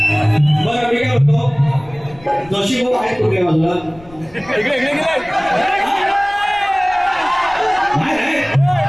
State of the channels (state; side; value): noise; left; rumble, 23 dB below the sound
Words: बरं मी काय म्हणतो, जोशी भाऊ आहेत कुठल्या बाजूला?